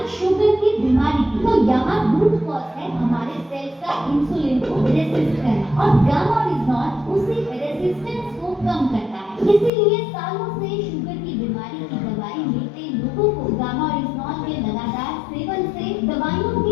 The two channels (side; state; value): right; drops out; at 9.7 s